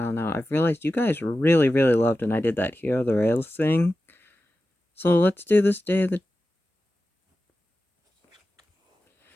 now, I've realized you guys really, really loved when I did that Hero the Rails thing. So let's do this day of the...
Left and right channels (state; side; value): normal; both; correlation 0.93